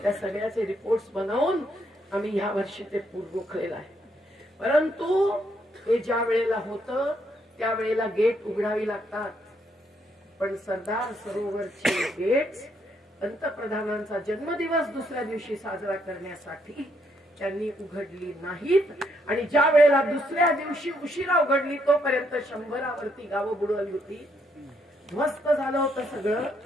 त्या सगळ्याचे रिपोर्ट्स बनवून आम्ही ह्या वर्षी ते रोखलेलं आहे. परंतु हे ज्या वेळेला होतं त्यावेळेला गेट उघडावी लागतात. पण सरदार सरोवरचे गेट्स पंतप्रधानांचा जन्मदिवस दुसऱ्या दिवशी साजरा करण्यासाठी त्यांनी उघडली नाहीत. आणि ज्या वेळेला दुसऱ्या दिवशी उशिरा उघडली तोपर्यंत 100वरती गावं बुडवली होती. ध्वस्त झालं होतं सगळं.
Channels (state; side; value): normal; both; correlation 0.74